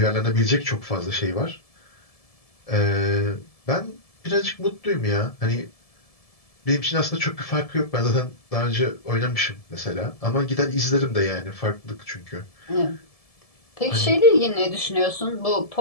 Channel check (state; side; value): late; right; 1.7 ms